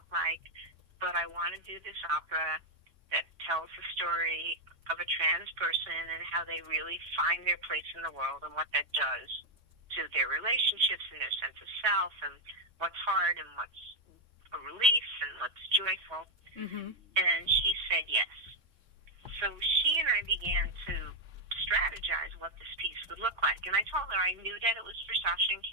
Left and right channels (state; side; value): late; left; 3.8 ms